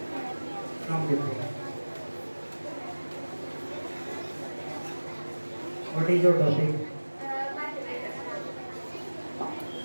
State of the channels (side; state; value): both; inverted; correlation -1.00